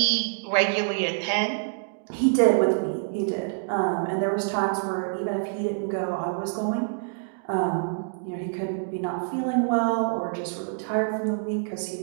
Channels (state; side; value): silent; left; digital silence